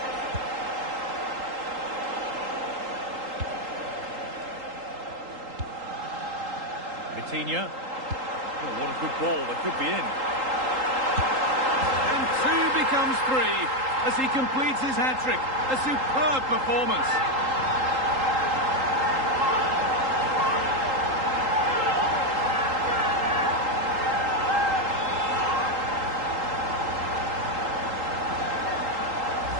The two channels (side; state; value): left; late; 3.8 ms